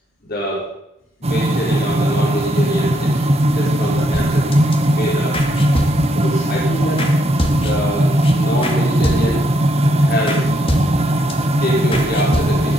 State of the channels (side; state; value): both; normal; correlation 0.76